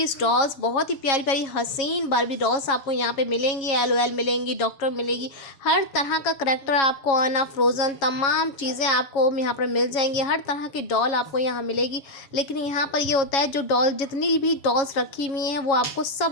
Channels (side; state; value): right; late; 7.3 ms